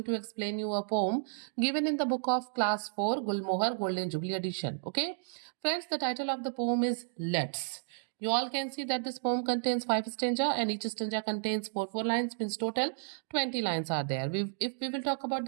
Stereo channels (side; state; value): left; silent; digital silence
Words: to explain you a poem given in the book of class 4 Gulmohar Golden Jubilee edition. Okay? Friends, the title of the poem is Let's. You all can see that this poem contains 5 stanza and each stanza contains 4 lines, means total 20 lines are there. If we will talk about